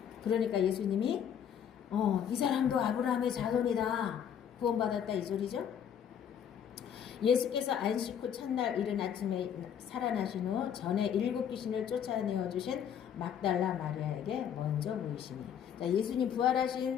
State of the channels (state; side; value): quieter; right; 8.7 dB